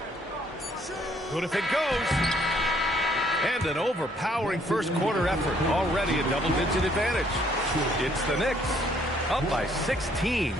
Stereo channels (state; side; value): normal; both; correlation 0.65